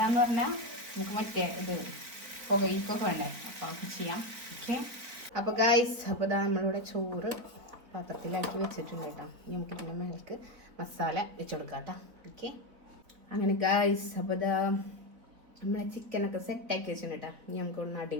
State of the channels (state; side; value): late; left; 4.0 ms